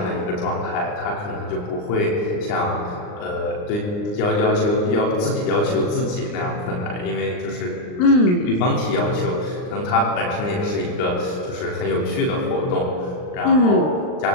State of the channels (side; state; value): right; late; 39 ms